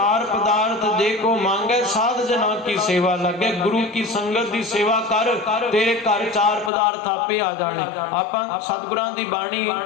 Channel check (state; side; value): drops out; right; at 6.7 s